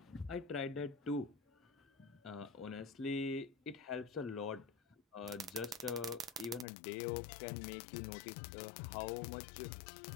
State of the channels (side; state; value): right; drops out; at 6.7 s